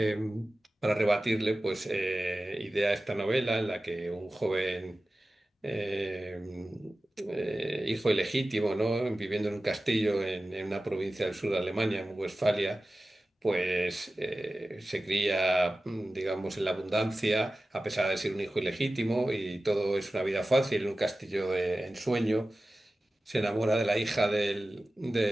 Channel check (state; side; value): normal; both; correlation 0.95